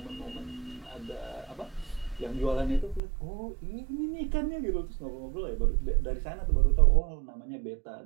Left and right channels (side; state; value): left; drops out; at 3.0 s